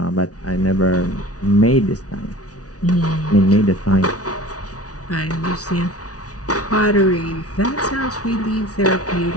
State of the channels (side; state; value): right; late; 0.68 ms